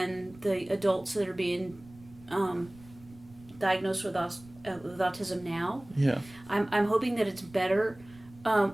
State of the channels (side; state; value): right; noise; rumble, 23 dB below the sound